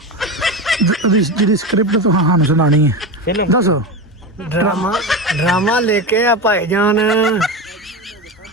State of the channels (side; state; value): both; normal; correlation 0.21